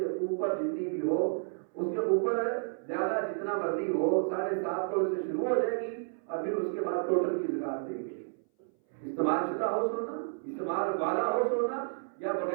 اوپر جتنی بھی ہو، اس کے اوپر زیادہ جتنا مرضی ہو 7.5 تولے سے شروع ہو جائے گی اور پھر اس کے بعد ٹوٹل کی زکات دیں گے. استعمال شدہ ہو سونا، استعمال والا ہو سونا یا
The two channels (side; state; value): left; silent; 57 dB below the other